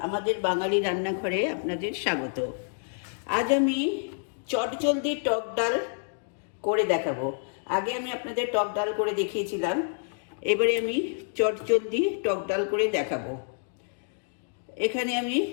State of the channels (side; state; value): right; silent; digital silence